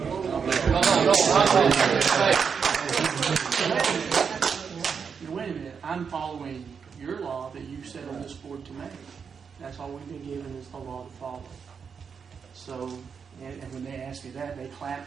Wait a minute. I'm following your law that you set on this board to make. That's all we've been given is the law to follow. So, and when they asked me that, they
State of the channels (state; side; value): quieter; left; 6.3 dB